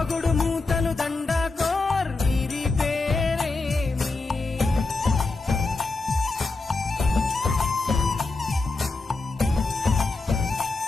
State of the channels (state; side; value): quieter; right; 3.6 dB